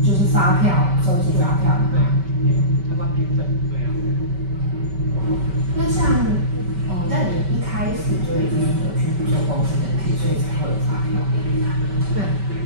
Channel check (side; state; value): left; late; 5.2 ms